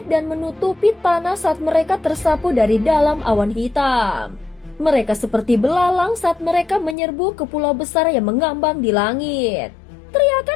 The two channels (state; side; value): drops out; right; at 7.0 s